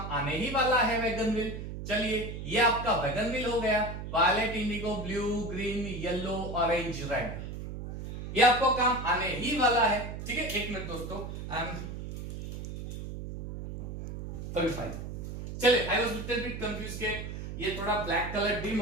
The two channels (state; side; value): noise; right; hum, 7 dB below the sound